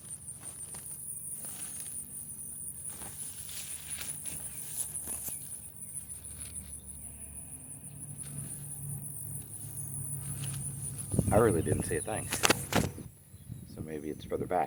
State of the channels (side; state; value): both; identical; correlation 1.00